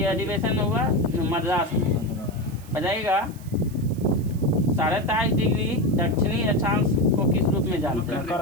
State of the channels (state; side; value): noise; right; hiss, 23 dB below the sound